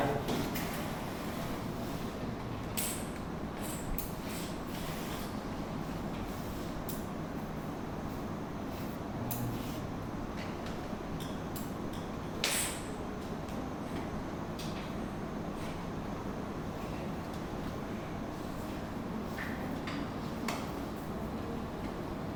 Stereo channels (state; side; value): identical; both; correlation 1.00